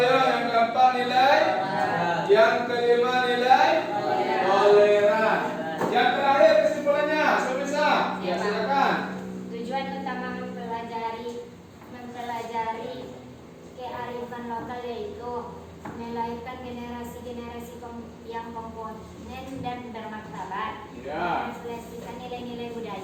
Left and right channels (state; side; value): identical; both; correlation 1.00